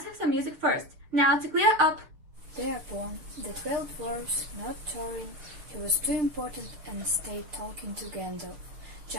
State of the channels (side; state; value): left; late; 6.6 ms